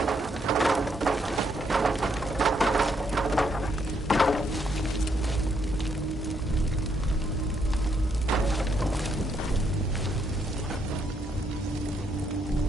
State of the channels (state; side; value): normal; both; correlation 0.74